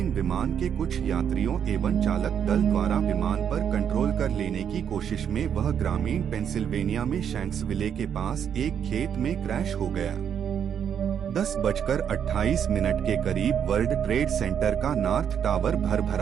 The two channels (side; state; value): left; quieter; 8.3 dB